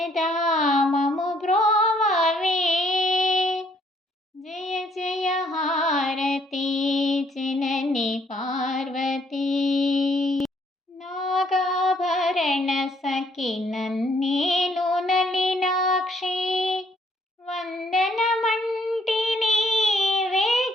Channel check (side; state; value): both; normal; correlation 0.66